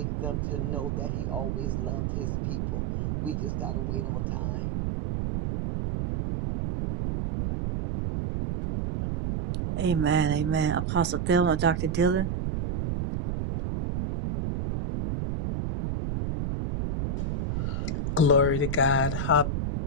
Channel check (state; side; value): noise; right; rumble, 1 dB below the sound